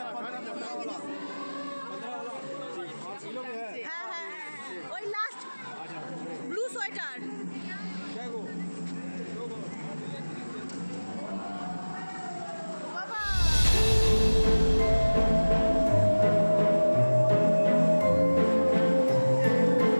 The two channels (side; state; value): both; inverted; correlation -1.00